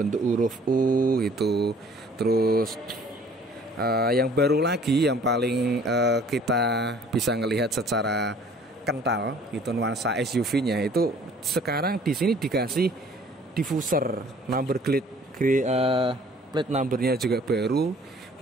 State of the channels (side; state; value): both; normal; correlation 0.54